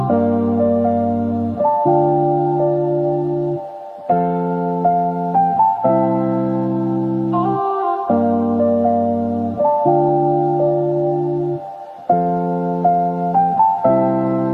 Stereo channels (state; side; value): identical; both; correlation 1.00